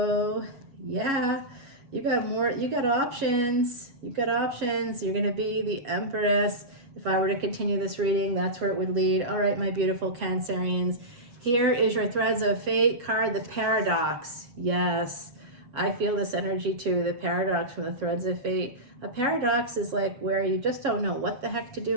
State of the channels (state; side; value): late; left; 7.4 ms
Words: Yeah. You got options. You've got options. You're going to be the Empress. If I were to continue this reading, that's where it would lead. All right, my beautiful Cancerians. Here is your Threads of Fate card, the Paradox. Yes, I feel this energy too, the Paradox from the Threads of Fate. A paradox is like where you just don't know what the heck to